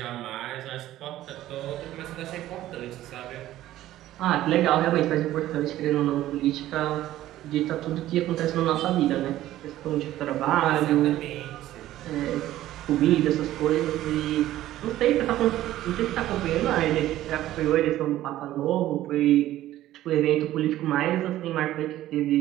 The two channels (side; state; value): left; quieter; 14.2 dB